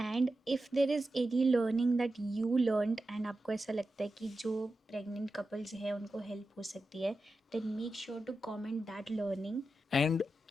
if there is any learning that you learned and आपको ऐसा लगता है कि जो प्रेग्नेंट कपल्स हैं उनको हेल्प हो सकती है, then make sure to comment that learning. And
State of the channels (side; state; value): both; normal; correlation 0.91